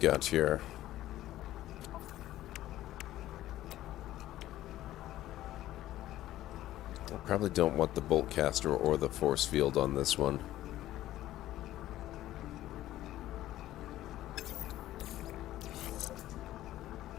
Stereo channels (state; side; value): quieter; right; 14.3 dB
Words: here. I probably don't want the bolt caster or the force field on this one.